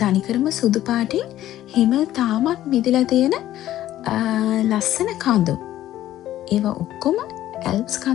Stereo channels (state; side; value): quieter; right; 13.3 dB